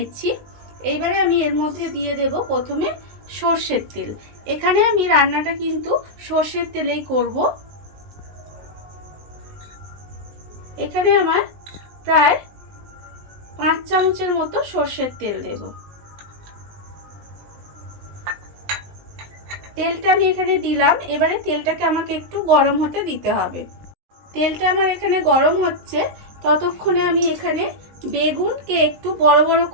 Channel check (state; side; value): late; left; 19 ms